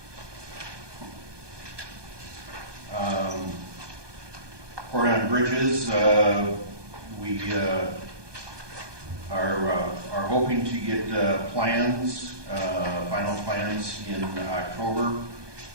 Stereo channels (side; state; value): left; late; 1.2 ms